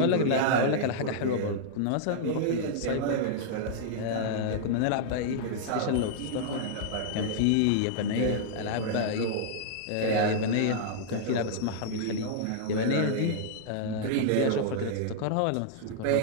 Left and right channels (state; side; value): different; both; correlation -0.01